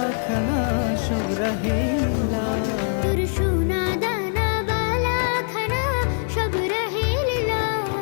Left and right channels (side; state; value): right; silent; 63 dB below the other